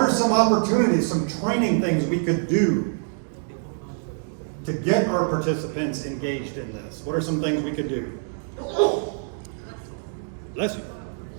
are some opportunities, some training things we could do to get our participants engaged in this? What are some things we could do? Bless you.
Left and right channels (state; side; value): silent; left; digital silence